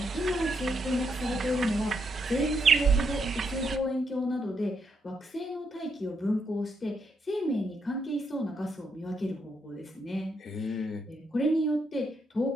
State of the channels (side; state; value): both; normal; correlation 0.78